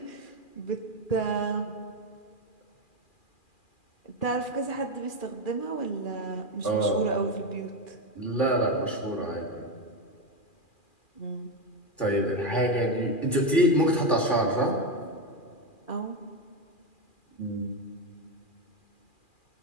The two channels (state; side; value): late; right; 2.4 ms